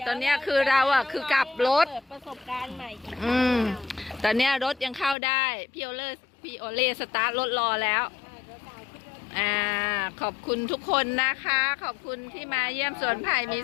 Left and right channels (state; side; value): drops out; right; at 5.2 s